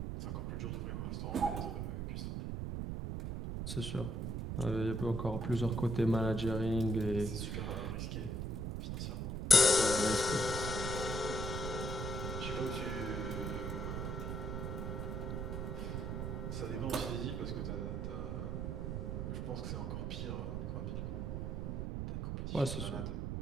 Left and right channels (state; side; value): noise; right; rumble, 2 dB below the sound